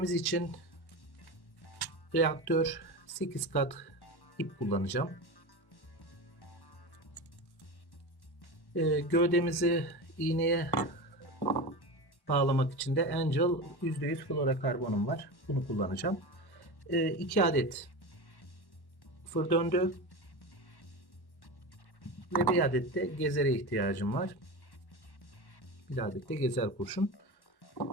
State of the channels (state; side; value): late; right; 1.1 ms